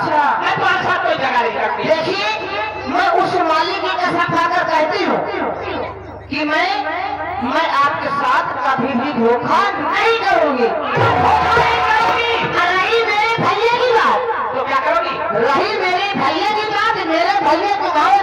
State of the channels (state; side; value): identical; both; correlation 1.00